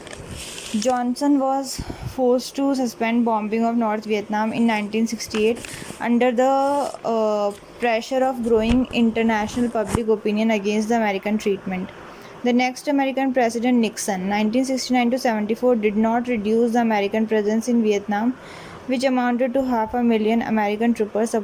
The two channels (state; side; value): identical; both; correlation 1.00